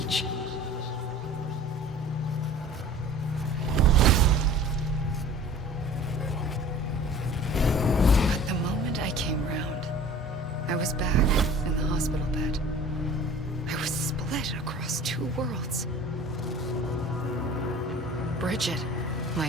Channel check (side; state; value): both; normal; correlation 0.44